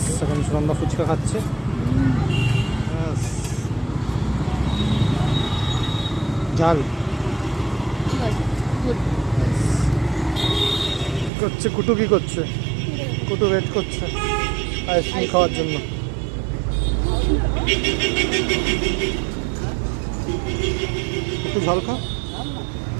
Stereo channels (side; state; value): left; drops out; at 11.3 s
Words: এখন সুনন্দা ফুচকা খাচ্ছে। ঝাল কি করছে কুটু? কি করছে কুটু? ওয়েট করছে আইসক্রিম খাওয়ার জন্য। একটু ঝাল খা,